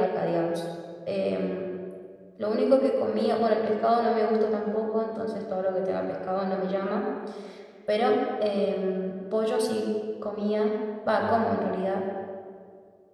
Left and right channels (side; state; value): both; identical; correlation 1.00